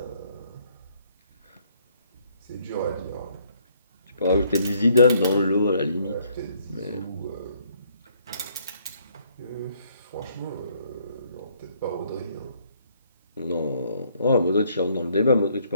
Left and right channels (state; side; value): inverted; both; correlation -0.67